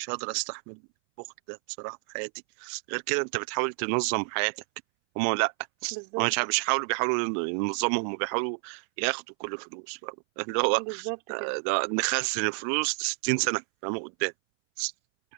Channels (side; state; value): left; silent; 58 dB below the other